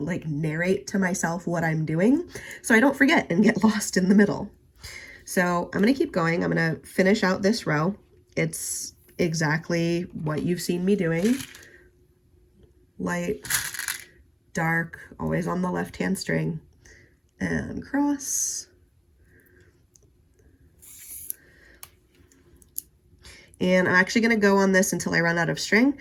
narrate to myself what I'm doing so I don't forget and get lost in the middle. So I'm going to keep going. I'm going to finish out this row. It's exactly what you've seen me doing. Light, dark, always on the left-hand string, and cross. And I'm actually going to go on this until I run out of string,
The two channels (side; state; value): both; identical; correlation 1.00